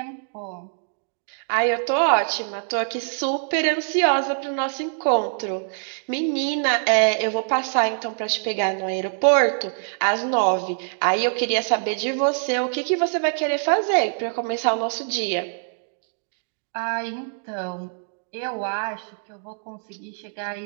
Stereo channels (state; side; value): silent; left; digital silence